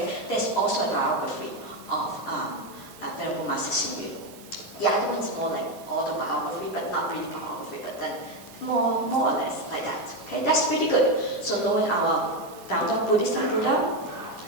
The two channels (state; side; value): late; left; 2.7 ms